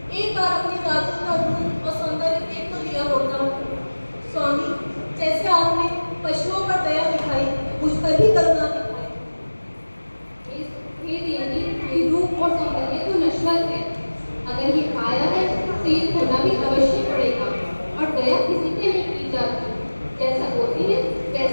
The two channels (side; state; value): both; inverted; correlation -1.00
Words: एक बार अपने राजू का रूप और सौंदर्य देख तो लिया होता। स्वामी, जैसे आपने पशुओं पर दया दिखाई, मुझ पर भी करुणा दिखाई। हे देवी, ये रूप और सौंदर्य तो नश्वर है। अगर ये आया है तो ये खोना भी अवश्य पड़ेगा। और दया किसी पे नहीं की जाती, जैसा बोलती है